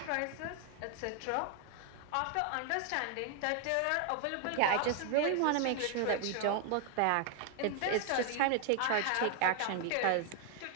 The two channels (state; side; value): different; both; correlation 0.00